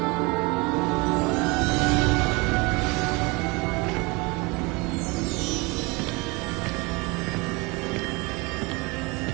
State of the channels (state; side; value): quieter; left; 26.5 dB